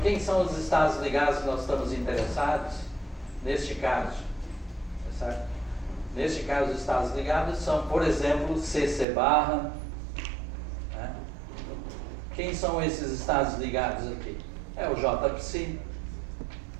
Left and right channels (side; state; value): left; drops out; at 9.1 s